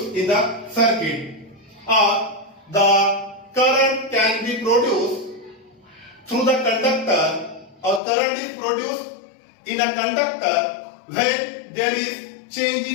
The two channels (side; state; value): right; drops out; at 8.0 s